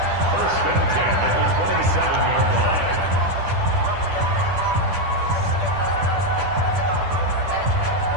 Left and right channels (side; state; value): left; late; 10 ms